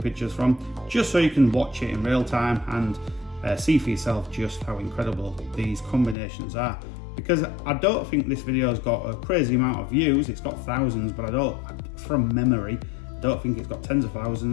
from, just so you can watch it in real time and see for yourself just how incredible these combinations are. Because I don't think this video has got a crazy amount of views, it's got thousands, but I don't, from memory, I don't think it's got tens of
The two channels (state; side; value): drops out; right; at 6.2 s